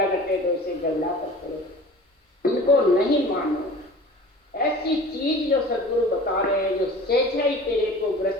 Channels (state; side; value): normal; both; correlation 0.42